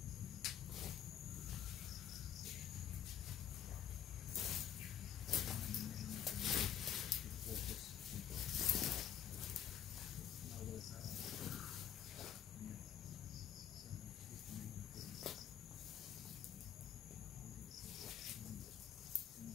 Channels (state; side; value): quieter; right; 9.7 dB